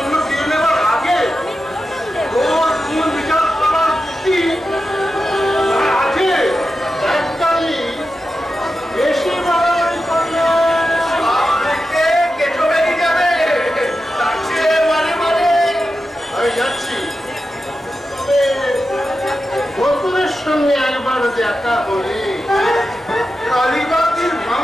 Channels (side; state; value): both; normal; correlation 0.91